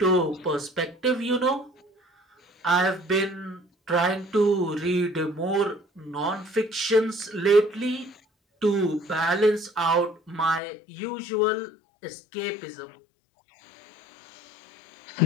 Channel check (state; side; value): drops out; right; at 10.6 s